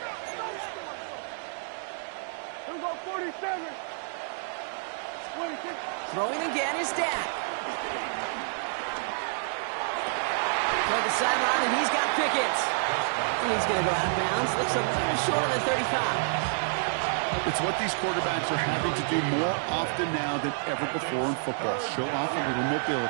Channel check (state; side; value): silent; left; digital silence